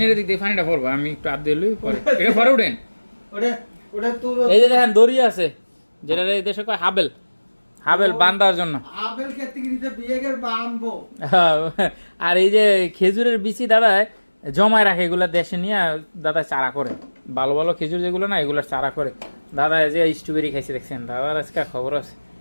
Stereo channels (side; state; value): both; inverted; correlation -1.00